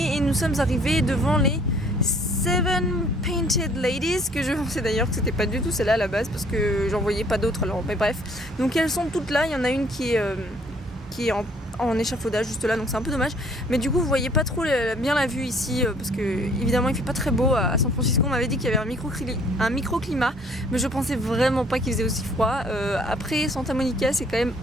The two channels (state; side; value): normal; both; correlation 0.59